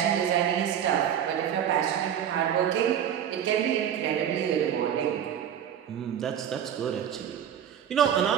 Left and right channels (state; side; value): quieter; left; 9.4 dB